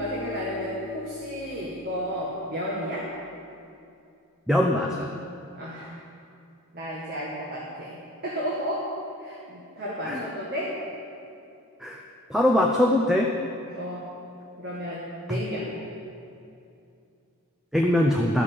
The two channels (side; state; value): both; normal; correlation 0.56